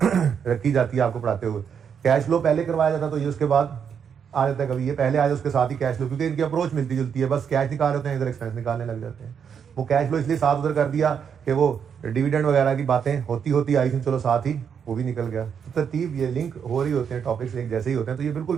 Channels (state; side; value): quieter; left; 7.4 dB